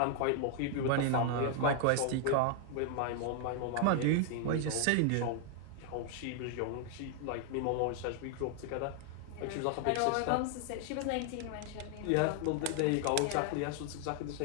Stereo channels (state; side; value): different; both; correlation 0.00